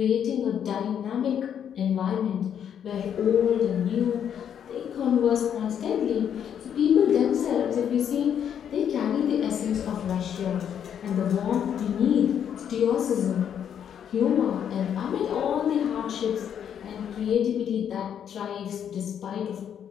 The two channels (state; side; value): quieter; right; 8.8 dB